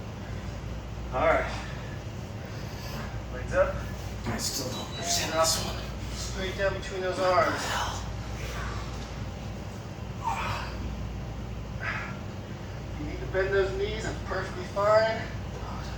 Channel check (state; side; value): identical; both; correlation 1.00